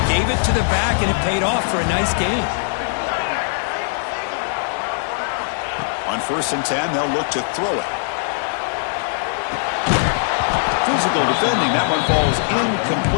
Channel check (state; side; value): silent; right; digital silence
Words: gave it to the back, and it paid off for a nice gain. On 1st and 10, they'll look to throw it. Physical defending. That one falls